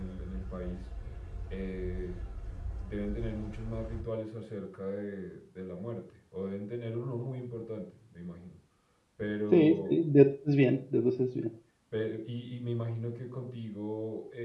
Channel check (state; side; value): identical; both; correlation 1.00